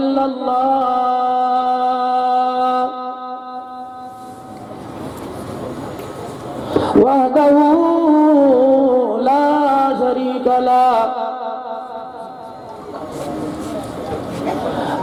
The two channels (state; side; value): identical; both; correlation 1.00